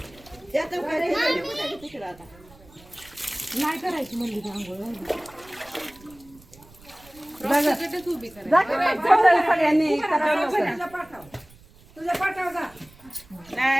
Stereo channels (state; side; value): noise; right; rumble, 25 dB below the sound